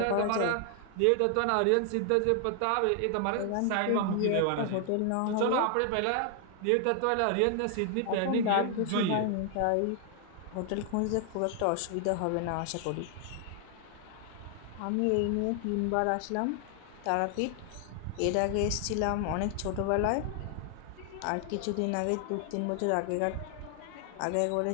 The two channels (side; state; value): both; different; correlation 0.00